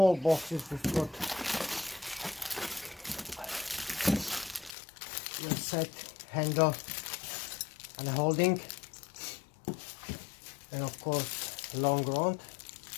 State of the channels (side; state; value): right; drops out; at 4.7 s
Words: boxes we've got your set handle and a holding, and of course long rod.